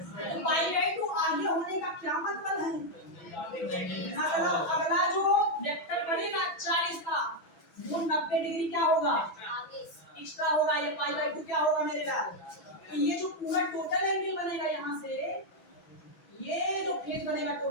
पाई बाई 2 आगे होने का क्या मतलब है? अगला जो वेक्टर बनेगा 40 का, वो 90 डिग्री क्या होगा? एक्स्ट्रा होगा। ये पाई बाई 2 क्या होगा मेरे लाल? तो ये जो पूरा टोटल एंगल बनेगा यहाँ से, ये जो फेज बनेगा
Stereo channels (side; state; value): right; late; 6.1 ms